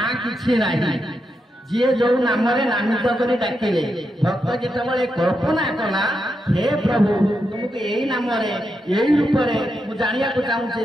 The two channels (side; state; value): both; normal; correlation 0.85